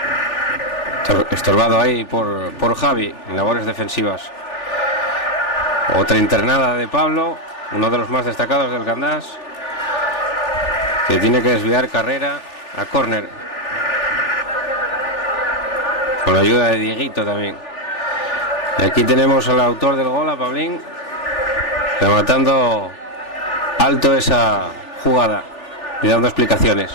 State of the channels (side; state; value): right; late; 3.4 ms